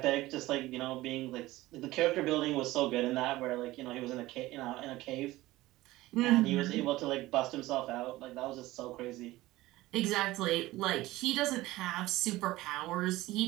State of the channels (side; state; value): left; quieter; 17.8 dB